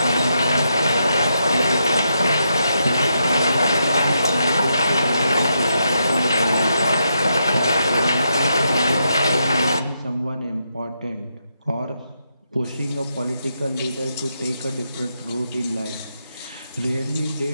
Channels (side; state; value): both; inverted; correlation -0.81